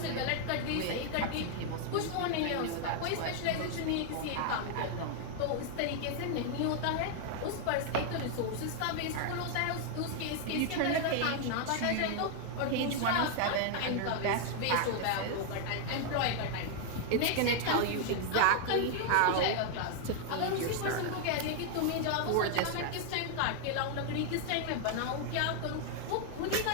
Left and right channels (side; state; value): both; different; correlation 0.00